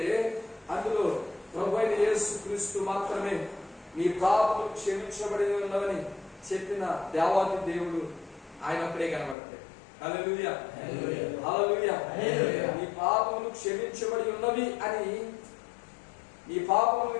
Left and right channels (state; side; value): drops out; right; at 9.3 s